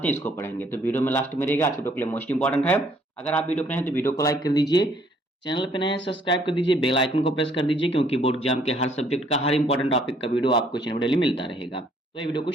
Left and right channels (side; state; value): both; normal; correlation 0.64